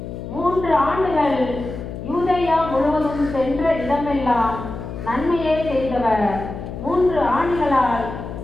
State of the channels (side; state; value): left; noise; hum, 9 dB below the sound